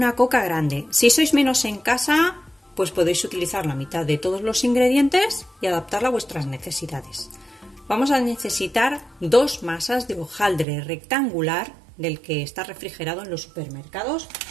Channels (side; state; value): left; drops out; at 10.7 s